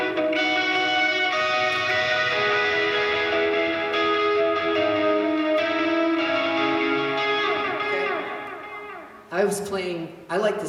I was playing, I like the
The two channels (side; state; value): both; identical; correlation 1.00